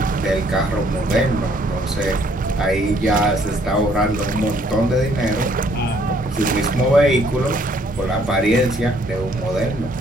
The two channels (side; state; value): both; normal; correlation 0.64